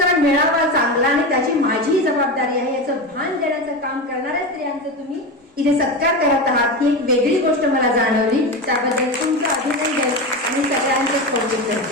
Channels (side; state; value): both; normal; correlation 0.21